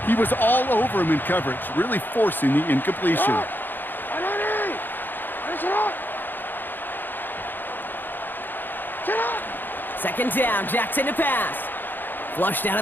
He was all over him in coverage, really forcing the incompletion. Second down, Jackson to pass. Flushed out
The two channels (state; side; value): late; right; 0.092 ms